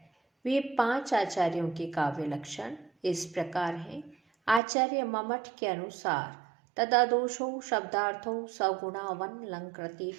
वे 5 आचार्यों के काव्य लक्षण इस प्रकार हैं। आचार्य ममट के अनुसार तदादोषौ शब्दार्थौ सगुणावन लंकृति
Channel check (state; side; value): drops out; left; at 4.6 s